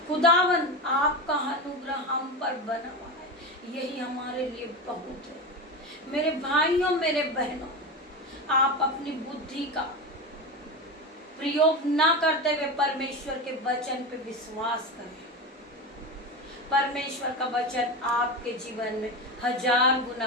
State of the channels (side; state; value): both; normal; correlation 0.21